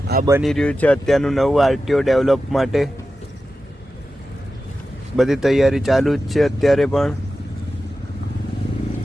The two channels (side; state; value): both; normal; correlation 0.92